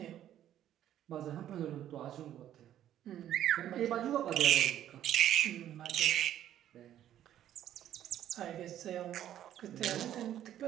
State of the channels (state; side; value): quieter; left; 11.5 dB